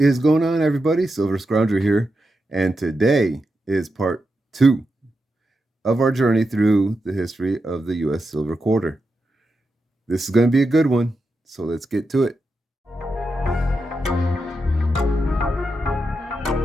going on, everybody? Silver Scrounger here, and today is part 2 of our journey through the history of the U.S. silver quarter. This is going to be a good one, so let's get to it.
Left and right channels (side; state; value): both; normal; correlation 0.87